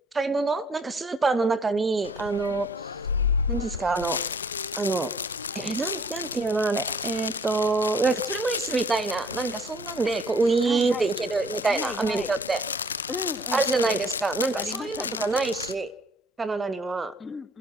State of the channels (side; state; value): both; normal; correlation 0.58